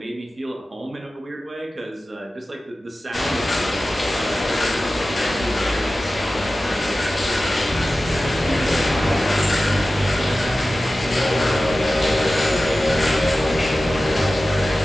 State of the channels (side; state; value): both; normal; correlation 0.95